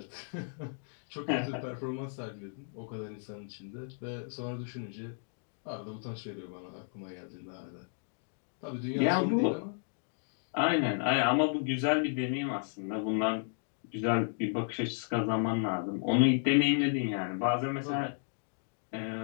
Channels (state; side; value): silent; right; digital silence